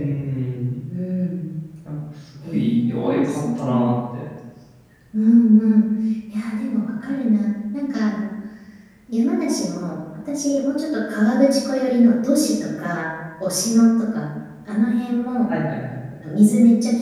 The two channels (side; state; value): both; identical; correlation 1.00